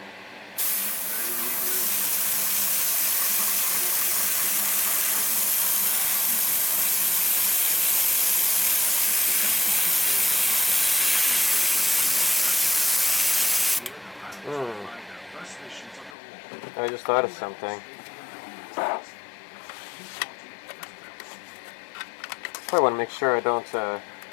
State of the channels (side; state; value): right; drops out; at 16.2 s